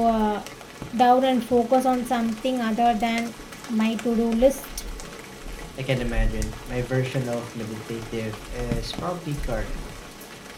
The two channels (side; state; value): both; identical; correlation 1.00